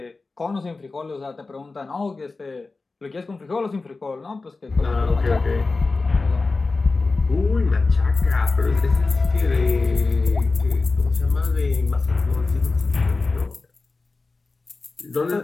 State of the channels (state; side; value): quieter; right; 3.7 dB